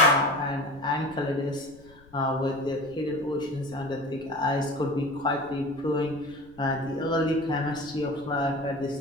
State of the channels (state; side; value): noise; left; rumble, 24 dB below the sound